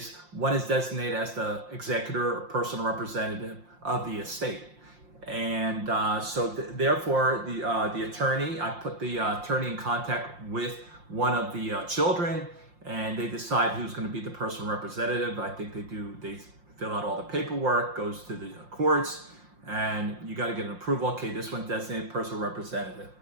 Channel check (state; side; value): late; left; 5.7 ms